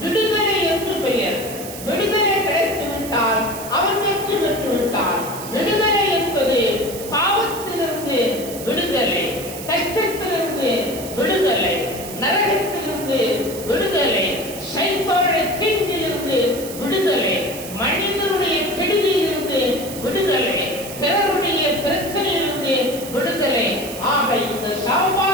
விடுதலை என்று பெயர். விடுதலை கிடைத்து விட்டால் அவன் வெற்றி பெற்று விட்டான். விடுதலை என்பது பாவத்திலிருந்து விடுதலை, கஷ்டத்திலிருந்து விடுதலை, நரகத்திலிருந்து விடுதலை, சைத்தானுடைய தீங்கிலிருந்து விடுதலை, மனிதனுடைய கெடுதியிலிருந்து விடுதலை, பிறருடைய பிரச்சனையிலிருந்து விடுதலை. ஆக இந்த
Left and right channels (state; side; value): noise; right; hiss, 12 dB below the sound